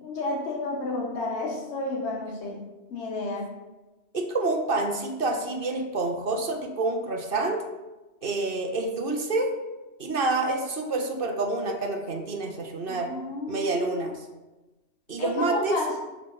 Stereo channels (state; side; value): late; right; 2.6 ms